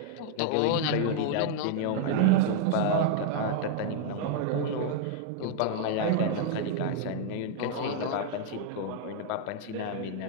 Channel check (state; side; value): different; both; correlation 0.00